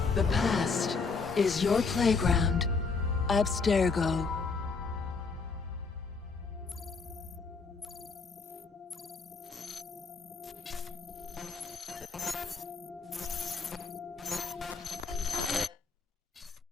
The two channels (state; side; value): quieter; right; 4.6 dB